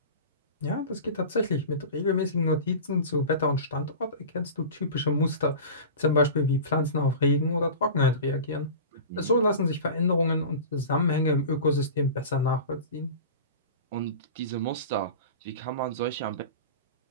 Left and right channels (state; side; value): inverted; both; correlation -0.33